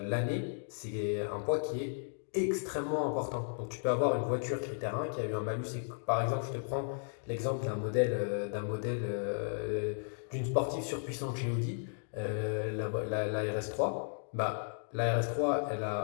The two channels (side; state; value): right; silent; digital silence